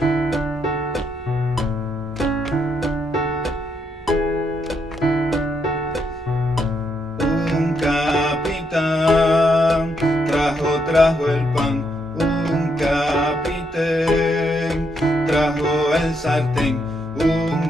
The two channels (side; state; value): both; normal; correlation 0.77